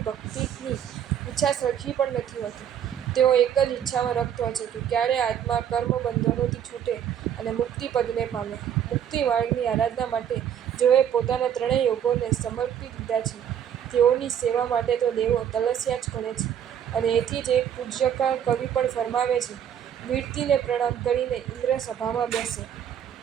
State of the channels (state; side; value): quieter; left; 9.3 dB